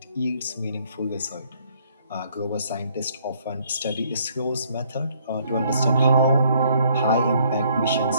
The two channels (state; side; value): inverted; both; correlation -0.65